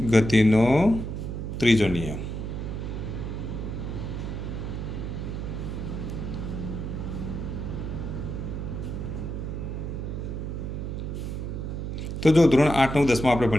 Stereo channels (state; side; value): noise; right; hum, 4 dB below the sound